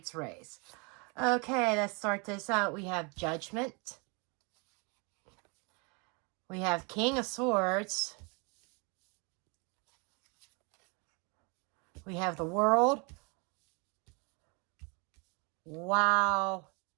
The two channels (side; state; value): left; quieter; 31.8 dB